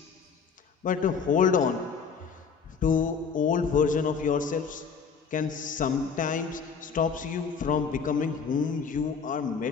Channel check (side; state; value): right; quieter; 5.9 dB